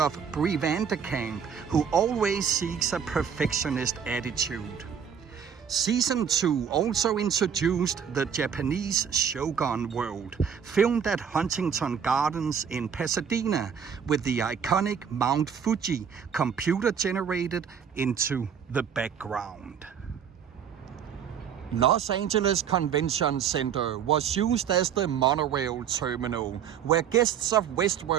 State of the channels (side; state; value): left; quieter; 7.7 dB